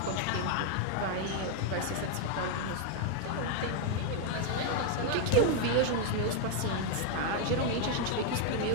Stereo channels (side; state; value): both; different; correlation 0.00